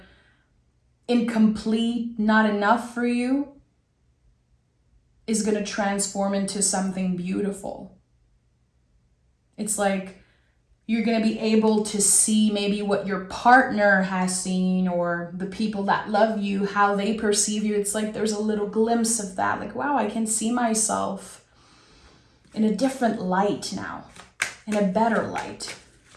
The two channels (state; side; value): identical; both; correlation 1.00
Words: incomplete, not enough for you, is going to transform into something beautiful. It's like you're going to be able to see maybe what your partner has seen, or the people that love you, how they perceive you. It's like there's a little glimpse of that. Like, wow, I can see myself in a different light now, in a better light.